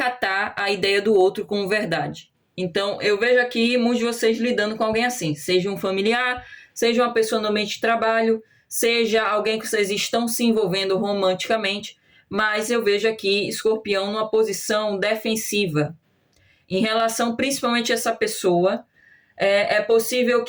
a ideia do outro como verdade. Então, eu vejo aqui muitos de vocês lidando com alguém assim, seja um familiar, seja uma pessoa no ambiente de trabalho, seja alguém que vocês estão se envolvendo romanticamente, mas eu vejo aqui Escorpião numa posição defensiva. Em relação principalmente a essa pessoa, é possível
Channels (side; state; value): both; identical; correlation 1.00